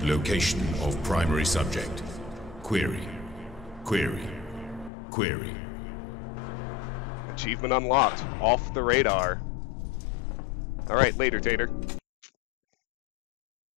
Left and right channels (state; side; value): drops out; right; at 4.9 s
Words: location of primary subject. Query. Query. Query. Achievement unlocked. Off the radar. Alright, later, Tater.